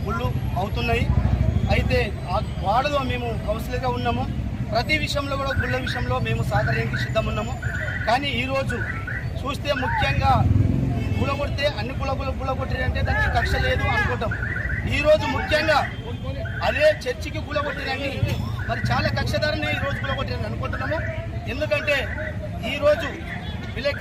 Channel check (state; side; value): identical; both; correlation 1.00